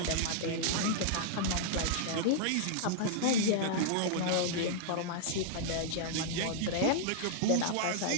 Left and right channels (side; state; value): both; different; correlation -0.02